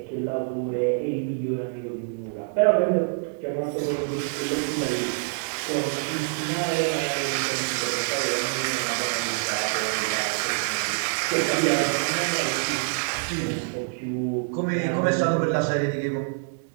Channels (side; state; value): left; silent; digital silence